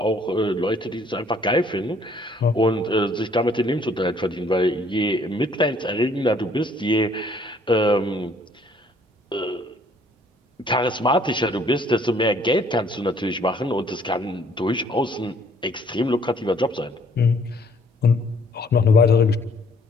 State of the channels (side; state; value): both; normal; correlation 0.61